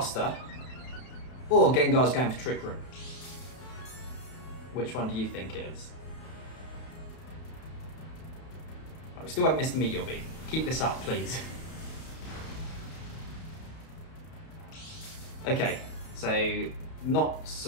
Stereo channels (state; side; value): late; right; 32 ms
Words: Or Gengar's going for Trick Room. Which one do you think it is? Right, we still haven't missed the Meteor Beam. Keep this up, please. Okay, so not